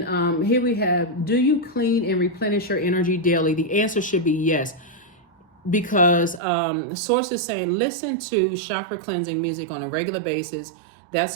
here we have, do you clean and replenish your energy daily? The answer should be yes. Because the source is saying, listen to chakra cleansing music on a regular basis.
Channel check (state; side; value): drops out; left; at 6.4 s